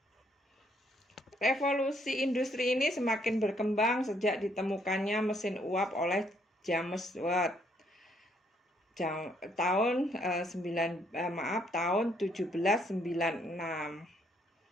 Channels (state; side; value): normal; both; correlation 0.69